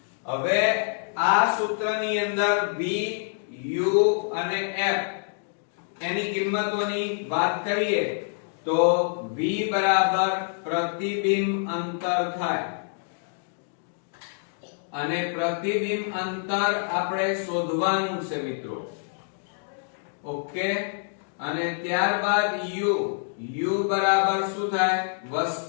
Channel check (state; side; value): silent; right; digital silence